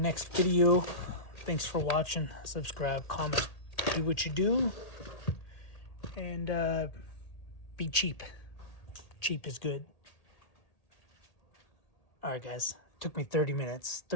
video. Thanks for watching. Subscribe, comment, do what you do, and be cheap. Cheap is good. Alright, guys. Took me 32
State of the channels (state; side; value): late; right; 1.8 ms